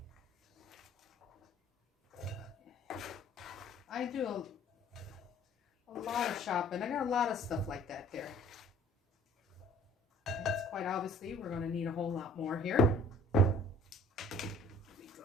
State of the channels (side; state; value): both; normal; correlation 0.53